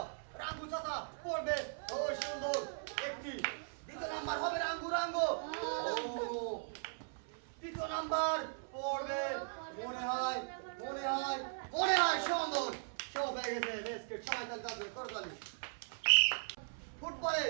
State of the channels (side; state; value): left; silent; 52 dB below the other